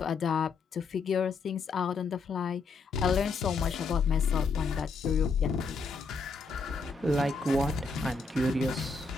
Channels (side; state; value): right; quieter; 4.3 dB